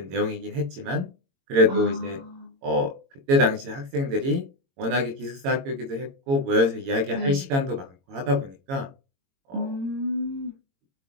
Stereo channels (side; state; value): left; late; 22 ms